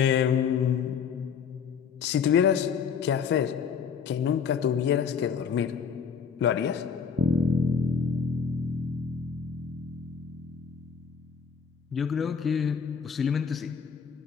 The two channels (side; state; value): right; quieter; 6.3 dB